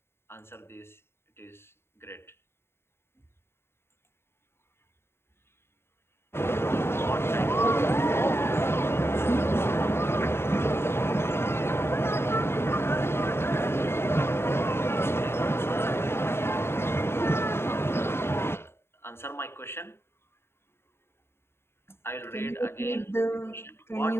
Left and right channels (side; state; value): right; late; 0.12 ms